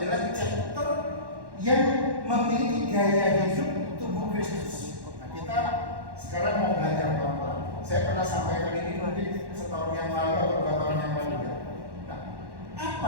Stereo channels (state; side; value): late; left; 1.1 ms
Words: chapter yang memiliki gaya hidup tubuh Kristus. Nah, kita sekarang mau belajar pelan-pelan. Saya pernah sampaikan ini mungkin setahun yang lalu atau 2 tahun yang lalu ya. Nah, apa